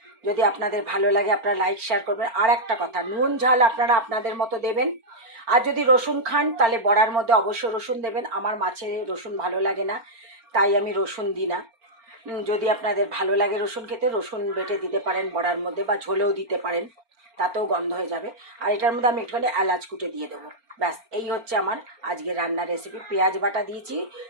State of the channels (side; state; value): left; late; 4.4 ms